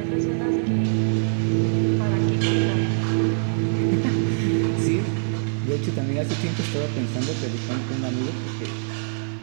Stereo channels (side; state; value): left; silent; 63 dB below the other